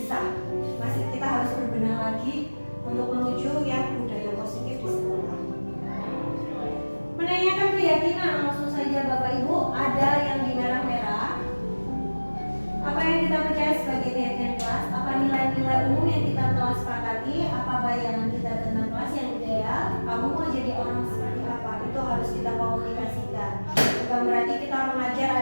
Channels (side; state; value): both; inverted; correlation -1.00